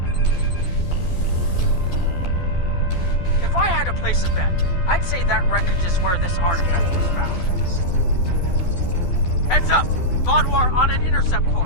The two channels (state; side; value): late; right; 12 ms